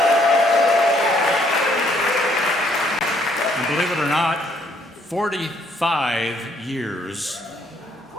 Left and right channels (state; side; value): normal; both; correlation 0.67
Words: And believe it or not, 45 years